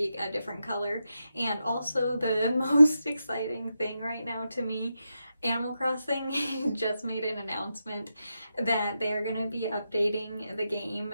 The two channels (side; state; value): both; inverted; correlation -0.87